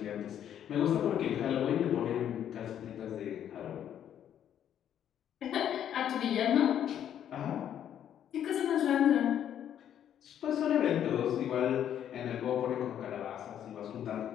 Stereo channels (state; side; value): quieter; right; 10.0 dB